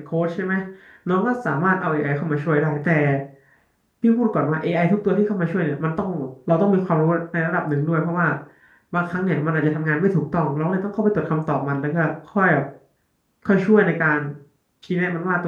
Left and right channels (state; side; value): identical; both; correlation 1.00